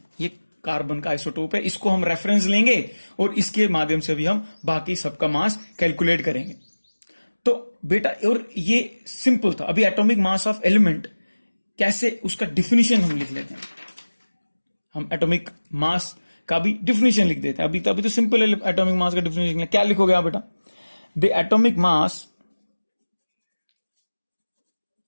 ये कार्बन का आइसोटोप है, इसको हम रेफरेंस लेंगे और इसके माध्यम से भी हम बाकी सबका मास कैलकुलेट करेंगे। तो बेटा और ये सिंपल था। अभी एटॉमिक मास ऑफ एलिमेंट कैसे, उसका डिफिनीशन हम लिख लेते हैं, हम एटॉमिक मास का भी डिफिनीशन लिख देते हैं। अभी तो सिंपल है एटॉमिक मास का डिफिनीशन। क्या लिखोगे आप बेटा, the atomic mass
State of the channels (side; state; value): both; inverted; correlation -1.00